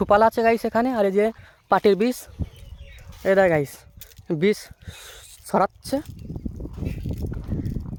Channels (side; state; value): both; identical; correlation 1.00